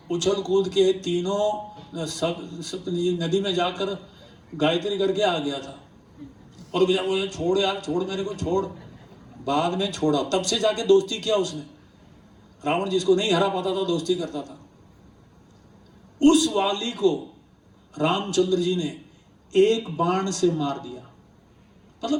उछल कूद के तीनों सब नदी में जाकर गायत्री करके आ गया था। और वो छोड़ यार, छोड़ मेरे को, छोड़। बाद में छोड़ा, तब से जाके दोस्ती किया उसने। रावण जिसको नहीं हरा पाता था दोस्ती करता था। उस वाली को रामचंद्र जी ने एक बाण से मार दिया।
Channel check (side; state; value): both; identical; correlation 1.00